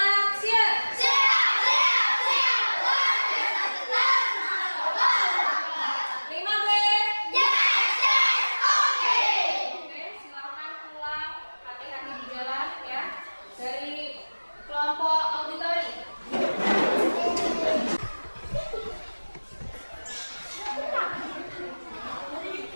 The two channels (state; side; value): inverted; both; correlation -1.00